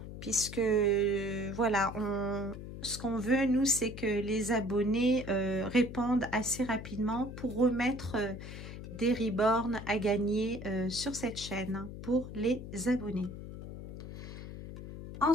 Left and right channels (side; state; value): left; noise; hum, 10 dB below the sound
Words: Puisque, voilà, ce qu'on veut, nous, c'est que les abonnés répondent assez rapidement pour remettre des reborns à gagner sur cette chaîne pour les abonnés.